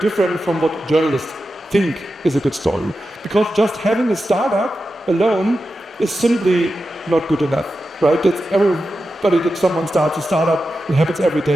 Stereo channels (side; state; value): both; normal; correlation 0.91